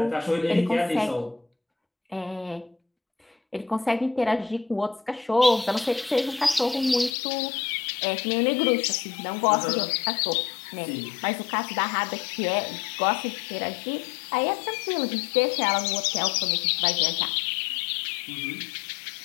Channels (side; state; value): right; drops out; at 7.1 s